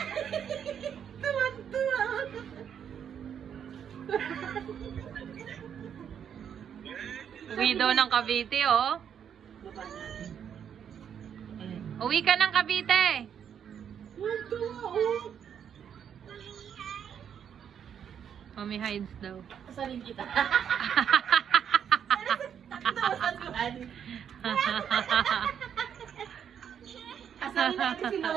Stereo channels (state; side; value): quieter; left; 8.4 dB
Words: Tuwan-tuwa. Uwi daw ng Cavite, oh. Uwi ka ng Cavite. Tuwan-tuwa, oh. Mommy hides daw. Kasalin kita. Kasalin natin si